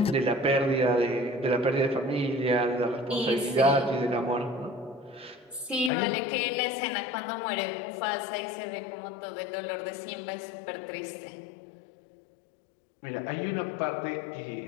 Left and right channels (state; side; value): drops out; right; at 5.9 s